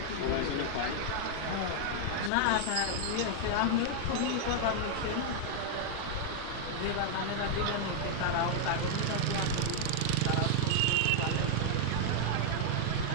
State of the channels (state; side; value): different; both; correlation 0.00